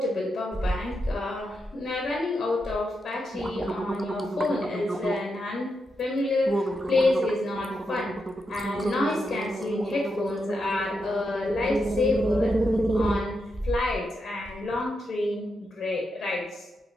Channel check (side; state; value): both; normal; correlation 0.85